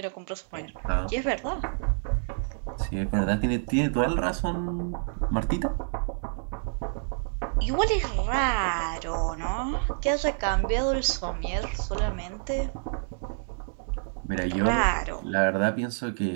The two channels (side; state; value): left; silent; 59 dB below the other